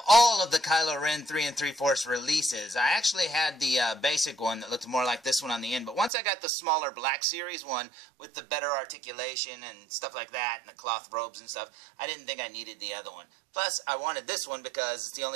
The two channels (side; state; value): left; drops out; at 6.1 s